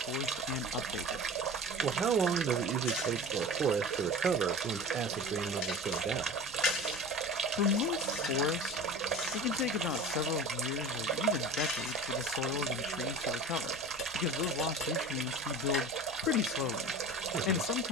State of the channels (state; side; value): normal; both; correlation 0.36